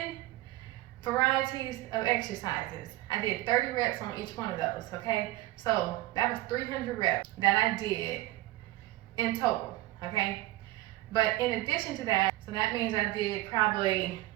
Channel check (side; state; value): left; quieter; 18.0 dB